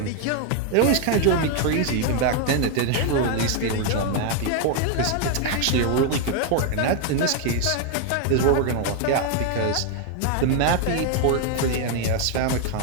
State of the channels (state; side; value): different; both; correlation 0.00